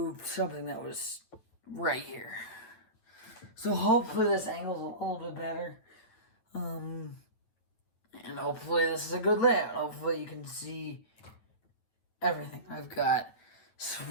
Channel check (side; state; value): right; late; 9.3 ms